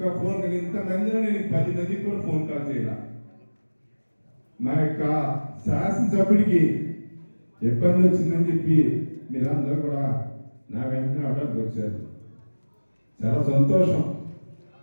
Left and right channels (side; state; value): both; inverted; correlation -1.00